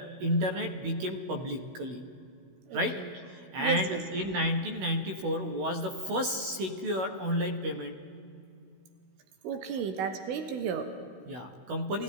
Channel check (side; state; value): left; late; 16 ms